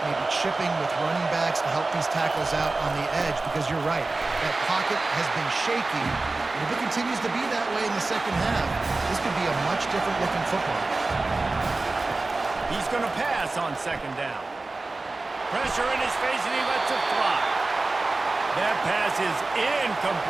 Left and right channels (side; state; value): left; quieter; 3.3 dB